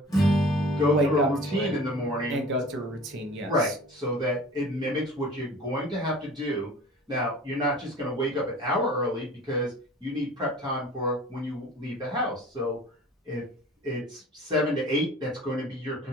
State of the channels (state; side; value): normal; both; correlation 0.44